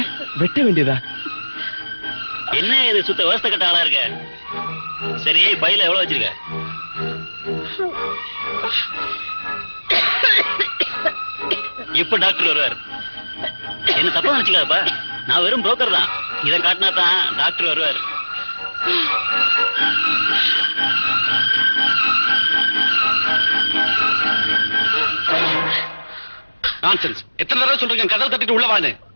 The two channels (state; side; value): inverted; both; correlation -1.00